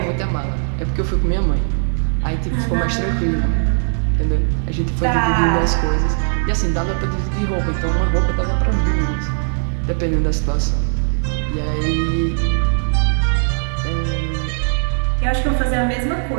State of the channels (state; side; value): silent; left; 67 dB below the other